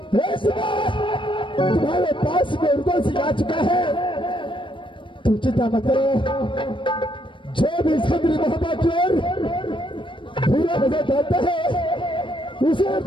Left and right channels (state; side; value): late; right; 0.24 ms